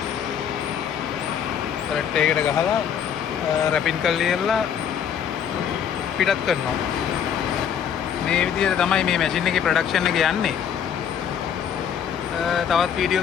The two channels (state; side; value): quieter; right; 8.4 dB